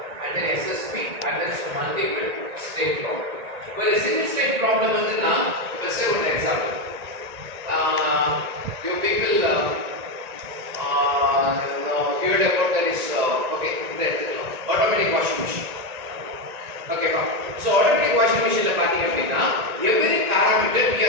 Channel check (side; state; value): left; late; 1.9 ms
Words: and then SSP and then some multiple state problem. Well, a single state problem is now, let's say one example. You people heard about that is okay, automatic washing machine. Okay, so automatic washing machine la pathina appadina every parameter we